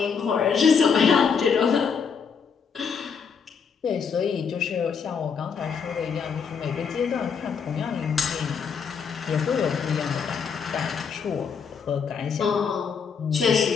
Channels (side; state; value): right; quieter; 6.3 dB